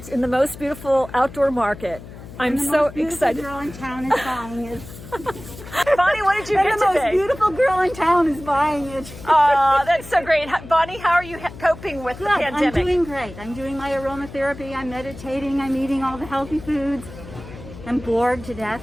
in the most beautiful outdoor market. I'm so excited. The most beautiful girl in town is buying it. Bonnie, what did you get The most today? beautiful girl in town is buying it. Oh, that's so great. Bonnie, how are you coping with the Good. pandemic? I'm doing great. I'm doing my aromatherapy. I'm meditating. I'm eating all the healthy foods. I'm bored to death.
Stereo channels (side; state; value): left; noise; hum, 15 dB below the sound